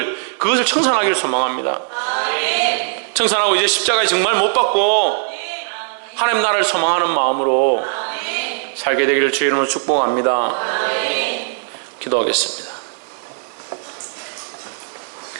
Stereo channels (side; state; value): left; silent; digital silence